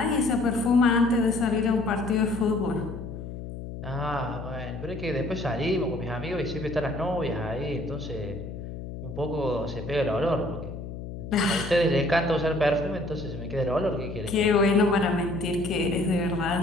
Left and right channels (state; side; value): noise; left; hum, 9 dB below the sound